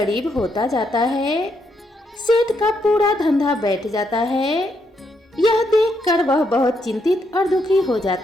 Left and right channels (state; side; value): normal; both; correlation 0.77